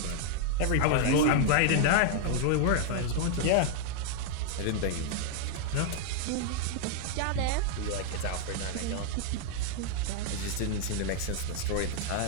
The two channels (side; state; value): both; different; correlation 0.00